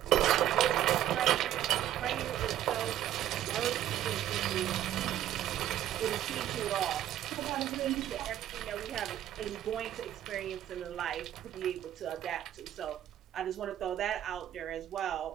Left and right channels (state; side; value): quieter; left; 12.0 dB